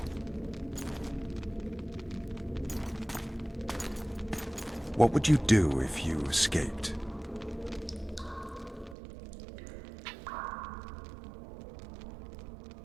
What would you do if you escaped?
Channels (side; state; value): left; drops out; at 9.0 s